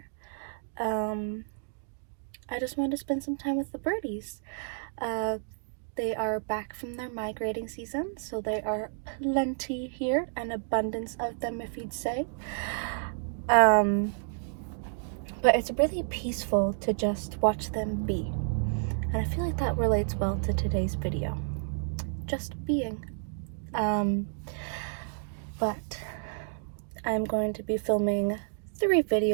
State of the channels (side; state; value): left; silent; digital silence